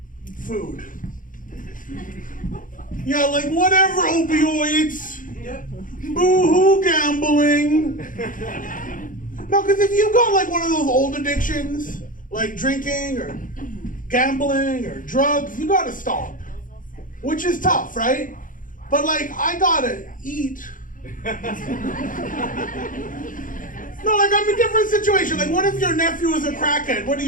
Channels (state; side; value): late; right; 0.39 ms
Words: Food. Yeah, like whatever, opioids. Boo-hoo, gambling. No, because if you got like one of those old addictions, like drinking or gambling or drugs, you gotta stop. Which is tough, right? But like, I gotta eat. No, like I'm in a different situation. Like, what if your nephew is a crackhead? What